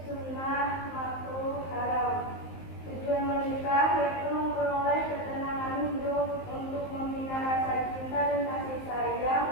sunnah, makruh, haram. Tujuan menikah yaitu memperoleh ketenangan hidup, untuk membina rasa cinta dan kasih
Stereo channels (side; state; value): right; late; 19 ms